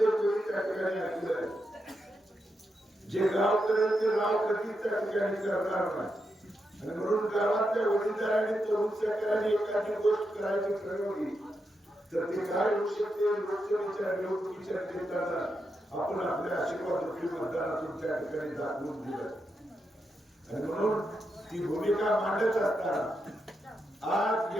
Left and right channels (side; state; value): both; normal; correlation 0.85